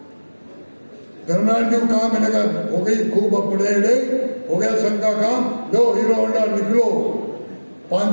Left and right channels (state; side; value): inverted; both; correlation -1.00